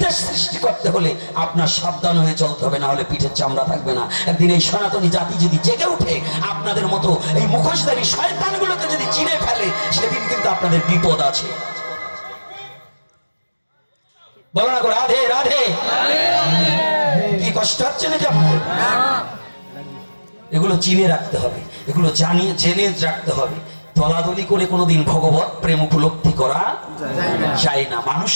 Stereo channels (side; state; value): both; inverted; correlation -1.00